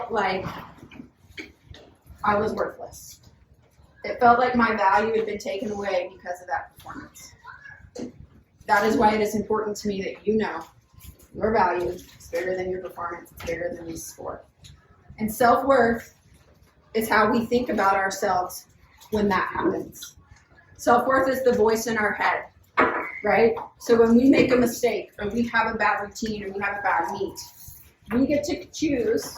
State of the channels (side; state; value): both; identical; correlation 1.00